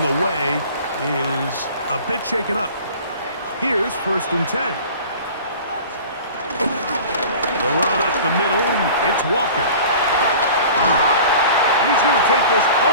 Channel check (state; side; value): inverted; both; correlation -0.42